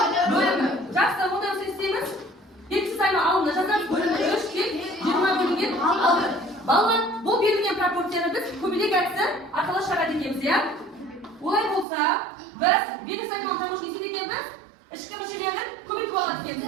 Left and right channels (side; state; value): left; drops out; at 11.9 s